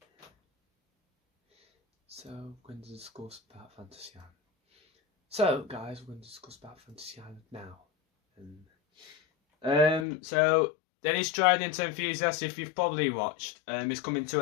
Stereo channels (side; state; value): right; drops out; at 10.1 s